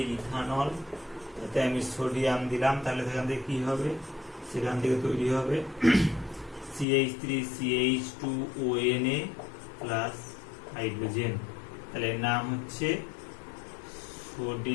ইথানল, তাতে আমি সোডিয়াম দিলাম, তাহলে সেখান থেকে কি হবে, সেখান থেকে তৈরি হবে CH3CH2ONA প্লাস হাইড্রোজেন, তাহলে এর নাম হচ্ছে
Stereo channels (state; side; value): drops out; right; at 6.9 s